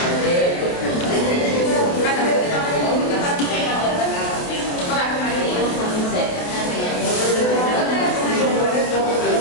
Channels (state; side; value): late; right; 28 ms